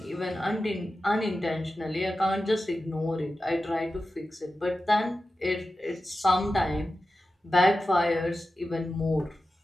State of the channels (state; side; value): normal; both; correlation 0.93